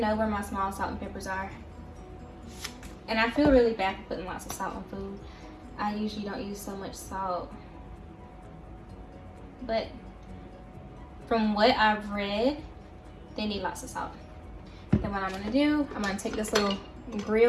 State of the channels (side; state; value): both; identical; correlation 1.00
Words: where my small salt and peppers are. And I feel really bad for putting lots of salt on food. I usually don't use so much salt. But from what I've read, they need lots of salt. Then what I'm gonna do, I'm gonna take this little